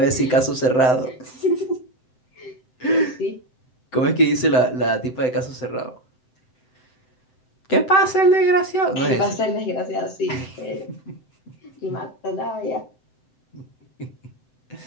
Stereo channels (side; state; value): right; late; 7.8 ms